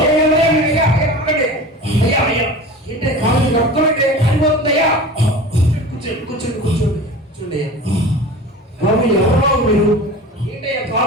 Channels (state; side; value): normal; both; correlation 0.35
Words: ఏంటే కాలు రక్తమంటే కాలిపోతుందయ్యా. కూర్చోండి కూర్చోండి కూర్చోండి కూర్చోండి. బాబు ఎవరో మీరు ఏంటయ్యా